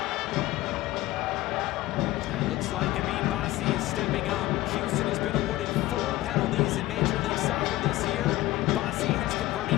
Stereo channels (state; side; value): quieter; right; 17.2 dB